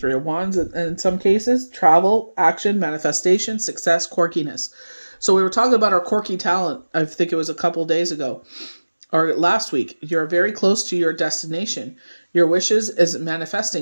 of Wands, and in some cases, travel, action, manifestation, success, quirkiness. So we were talking about our quirky talent, I think it was a couple days ago, or last week. You're very close to your destination. Your wishes is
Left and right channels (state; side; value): inverted; both; correlation -1.00